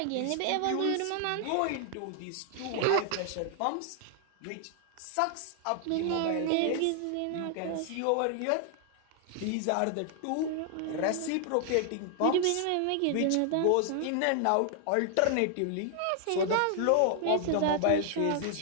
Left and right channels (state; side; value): different; both; correlation 0.00